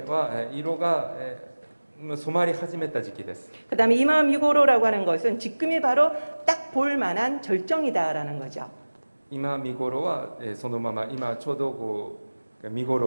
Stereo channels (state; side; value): inverted; both; correlation -1.00